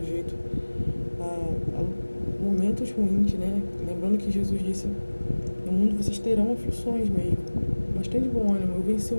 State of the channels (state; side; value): inverted; both; correlation -1.00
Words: a momentos ruins, né? Lembrando que Jesus disse: no mundo vocês terão aflições mesmo, mas tem de bom ânimo, eu venci o